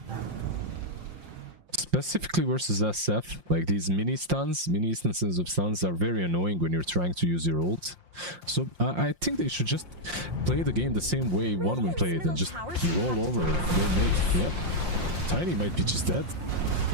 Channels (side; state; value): left; late; 5.7 ms